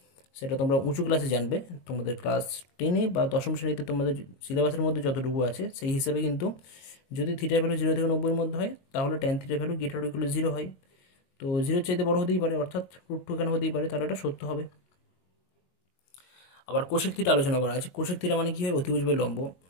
সেটা তোমরা উঁচু ক্লাসে জানবে, তোমাদের ক্লাস 10-এ বা 10ম শ্রেণীতে তোমাদের সিলেবাসের মধ্যে যতটুকু আছে সেই হিসাবে। কিন্তু যদি থিটা ভ্যালু 0 থেকে 90-এর মধ্যে হয়, তাহলে tan theta value greater or equal to 0 হয়। তো 0-এর চাইতে বড় হতেই পারে, অর্থাৎ √2 এখানে হতেই পারে, তাহলে এটা সত্য হবে। আবার কোসেক থিটা আলোচনা করা আছে। কোসেক থিটা মানে কি হয়? অতিভুজ বাই লম্ব।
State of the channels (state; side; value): late; right; 22 ms